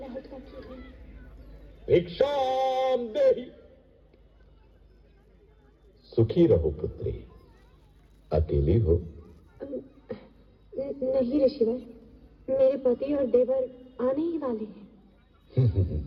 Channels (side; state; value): both; identical; correlation 1.00